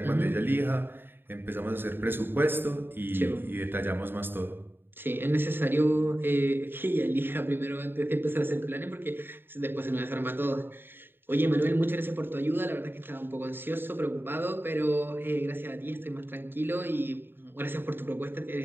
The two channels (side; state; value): left; late; 0.10 ms